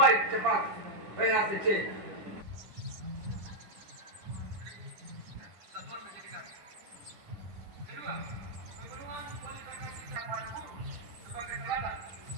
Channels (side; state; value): left; late; 10 ms